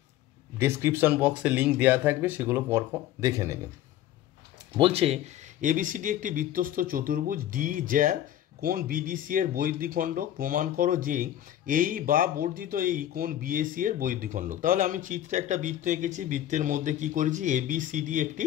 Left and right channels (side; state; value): right; quieter; 12.3 dB